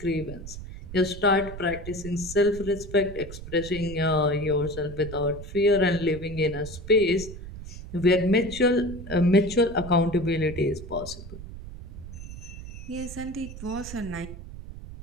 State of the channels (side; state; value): right; noise; rumble, 12 dB below the sound